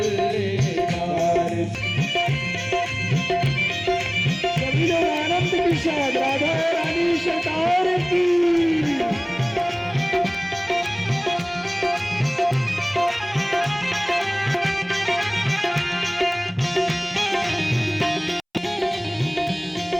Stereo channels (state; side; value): identical; both; correlation 1.00